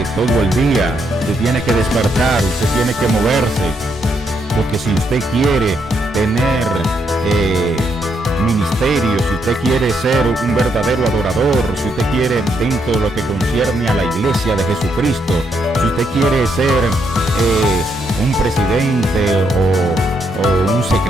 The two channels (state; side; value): normal; both; correlation 0.77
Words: todo el día. Usted tiene que despertar, usted tiene que moverse, porque si usted quiere tener ministerio, si usted quiere ser un verdadero adorador, si usted quiere, dentro de lo que concierne a la iglesia de Jesucristo, si usted quiere ser un presidente o un